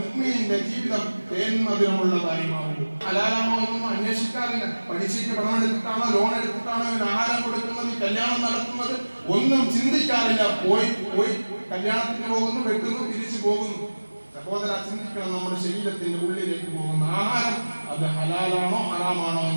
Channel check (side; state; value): both; inverted; correlation -1.00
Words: മുഅ്മിനിന്റെ ജീവിതം തേന്മധുരമുള്ളതായി മാറൂ. ഹലാലാണോ എന്നൊന്നും അന്വേഷിക്കാറില്ല. പഠിച്ചിട്ട് പണം എടുത്തിട്ടാണോ ലോൺ എടുത്തിട്ടാണോ ഇവന് ആഹാരം കൊടുക്കുന്നത്, കല്യാണം നടത്തുന്നത് ഒന്നും ചിന്തിക്കാറില്ല. പോയി കല്യാണത്തിന് പോകുന്നു, വെട്ടുന്നു, തിരിച്ചു പോകുന്നു. സഹോദര, ചിന്തിക്കണം. നമ്മുടെ ശരീരത്തിന്റെ ഉള്ളിലേക്ക് പോകുന്ന ആഹാരം അത് ഹലാലാണോ ഹറാമാണോ